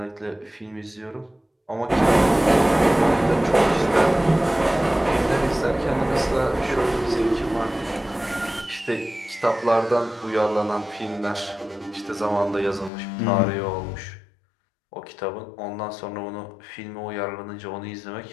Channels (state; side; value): drops out; right; at 12.9 s